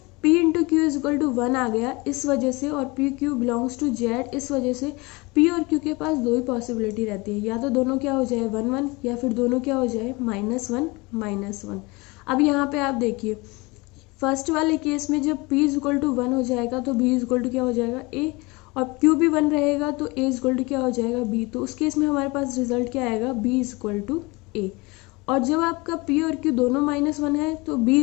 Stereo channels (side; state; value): right; quieter; 24.8 dB